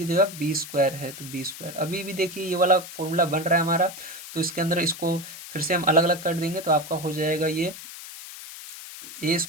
जगह बी स्क्वायर है तो बी स्क्वायर। अभी भी देखिए ये वाला फॉर्मूला बन रहा है हमारा, तो इसके अंदर इसको फिर से हम अलग अलग कर देंगे, तो आपका हो जाएगा ये ए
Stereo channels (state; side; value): noise; left; hiss, 13 dB below the sound